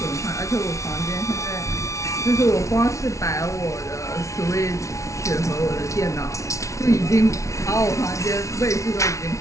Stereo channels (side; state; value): right; late; 0.14 ms